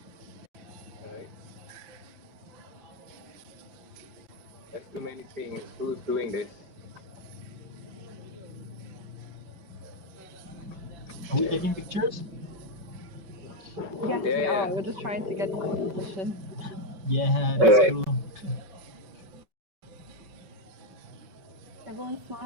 Alright. There's too many things. Who's doing this? Are we taking pictures? Yes, we Yeah. are. We're just trying to get into position. Yeah, that's Alright. cool. Everyone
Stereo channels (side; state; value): left; late; 5.3 ms